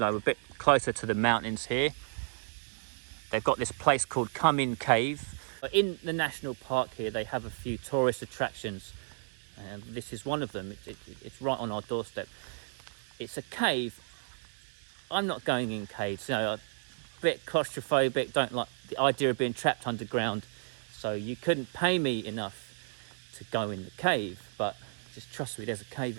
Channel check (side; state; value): left; silent; digital silence